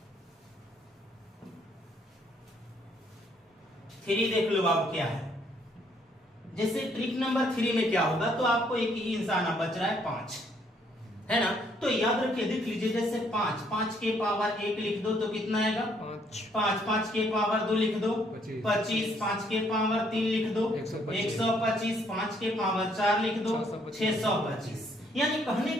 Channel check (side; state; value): both; normal; correlation 0.68